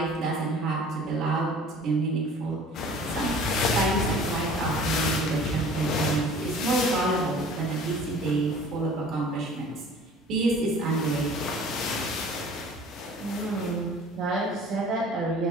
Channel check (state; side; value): normal; both; correlation 0.47